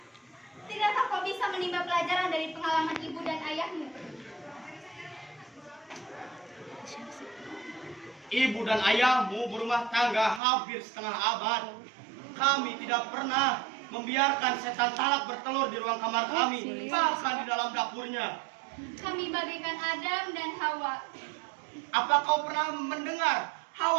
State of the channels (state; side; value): drops out; left; at 10.4 s